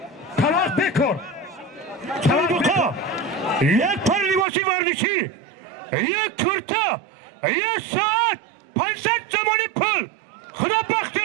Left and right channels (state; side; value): drops out; left; at 4.5 s